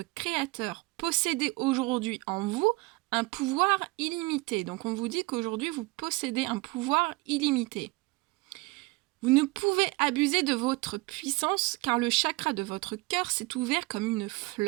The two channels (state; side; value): quieter; left; 23.3 dB